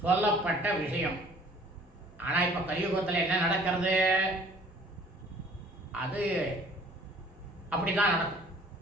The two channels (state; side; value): normal; both; correlation 0.54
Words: சொல்லப்பட்ட விஷயம். ஆனால் இப்போ கலியுகத்தில் என்ன நடக்கிறது? அது அப்படிதான் நடக்கும்,